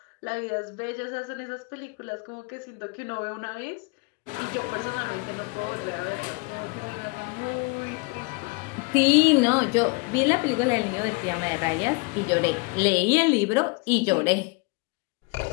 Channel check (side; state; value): right; quieter; 29.9 dB